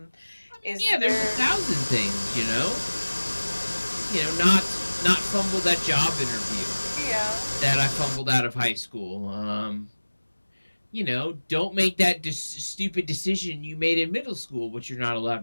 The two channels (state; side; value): inverted; both; correlation -1.00